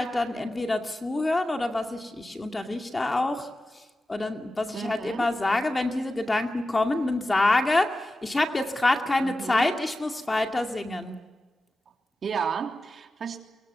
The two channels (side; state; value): both; normal; correlation 0.93